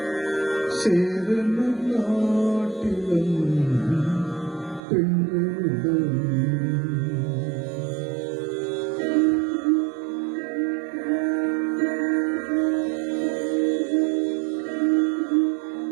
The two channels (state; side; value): drops out; left; at 4.8 s